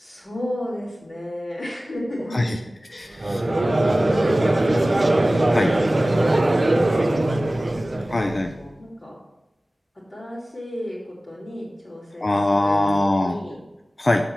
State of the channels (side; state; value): both; normal; correlation 0.97